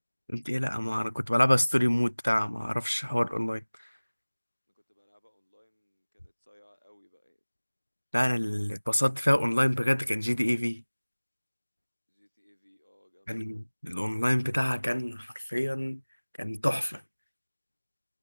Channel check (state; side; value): inverted; both; correlation -1.00